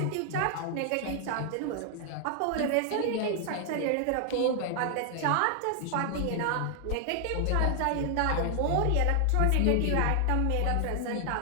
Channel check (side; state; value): both; different; correlation 0.00